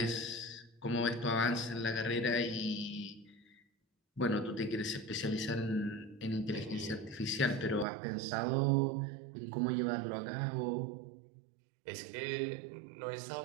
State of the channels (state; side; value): drops out; left; at 7.9 s